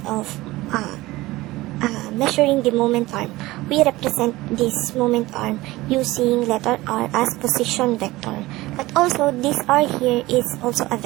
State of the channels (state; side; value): quieter; left; 19.0 dB